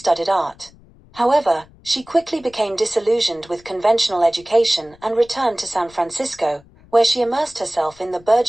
art. However, she quickly became disillusioned with conventional education and returned to San Francisco, where she immersed herself in the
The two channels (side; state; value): left; noise; rumble, 26 dB below the sound